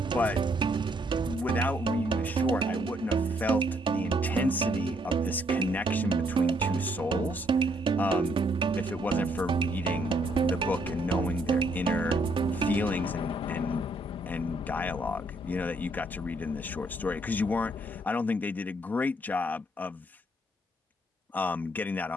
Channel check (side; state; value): both; normal; correlation 0.70